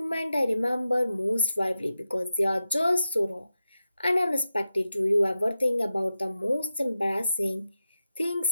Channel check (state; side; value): inverted; both; correlation -0.91